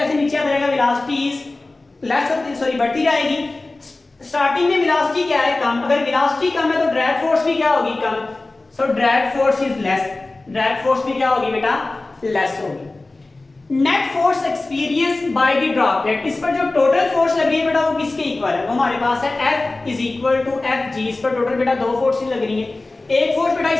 नीचे आता जाएगा वेलोसिटी इज लेस होती, सॉरी बढ़ती जाएगी। स्टार्टिंग में वेलोसिटी क्या है, कम, अगर वेलोसिटी कम है तो ड्रैग फोर्स भी क्या होगी, कम, so drag force is less, drag force भी क्या होगी बेटा, लेस होगी। Net force experience by the droplet, इस पर जो टोटल फोर्स लग रही है बेटा वो किसके इक्वल है, वो हमारे पास है F is equal to Fg, इस पर टोटल बेटा दो फोर्सेस लग रही है, एक फोर्स बेटा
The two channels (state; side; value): quieter; right; 3.1 dB